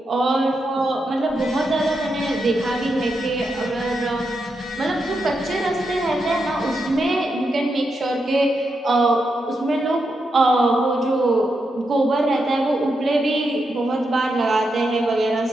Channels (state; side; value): normal; both; correlation 0.84